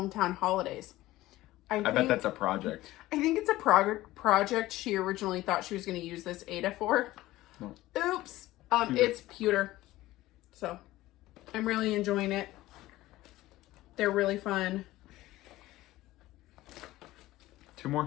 Holidays. I bet that's a project. I think it's a project she originally thought she was going to use this Ada for. No. Oops. It's pewter. So, I'm really enjoying it. They're really fun. 2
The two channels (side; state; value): right; quieter; 16.8 dB